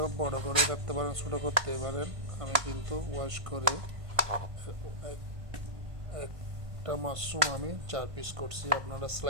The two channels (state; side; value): late; left; 1.5 ms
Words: বড় করে কাটতে পারেন, ছোটো করতে পারেন। আমি কিন্তু ওয়াশ করে একটা মাশরুম আমি 4 পিস করছি। আপনারা